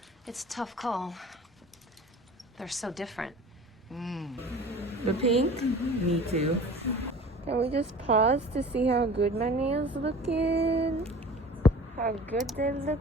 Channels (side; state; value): both; normal; correlation 0.42